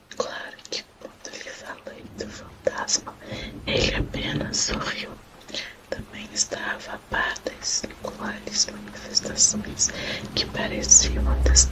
Claro que quando lhe falei do fantasma, ele apenas sorriu. Também estava a par das singulares manifestações que pareciam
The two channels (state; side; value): identical; both; correlation 1.00